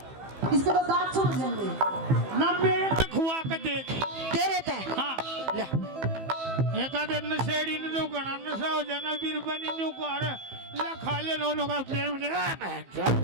इसके तो दांत छूट जाएंगे। ना मेरे तो खुआ कर देख। तेरे ते हाँ ले एक आधे नशेड़ी ने तो गणा नशा हो जाना वीर बनी न्यू कर ला खा ले नो का प्रेम ले।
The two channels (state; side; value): late; left; 15 ms